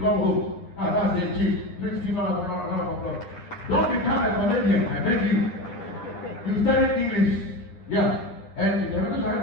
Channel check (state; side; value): late; right; 10 ms